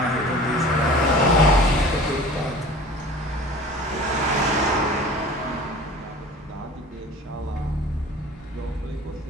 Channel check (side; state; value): both; normal; correlation 0.42